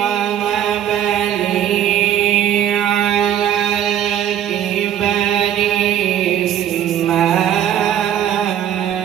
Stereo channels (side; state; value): left; quieter; 10.6 dB